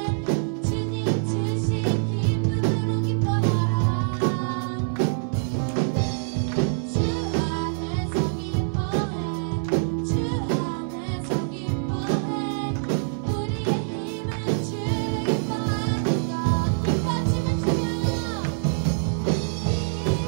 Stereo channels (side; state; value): left; silent; digital silence